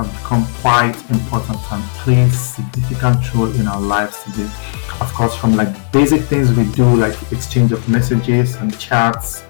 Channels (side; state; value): right; silent; digital silence